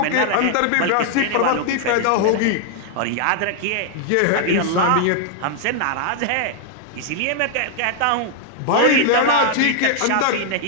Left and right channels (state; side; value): different; both; correlation 0.00